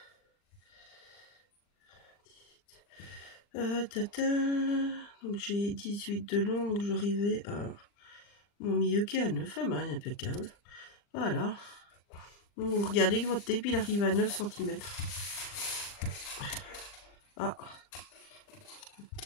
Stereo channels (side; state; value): right; late; 40 ms